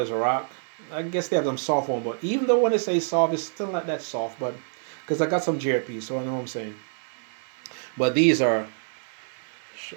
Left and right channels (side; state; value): left; silent; digital silence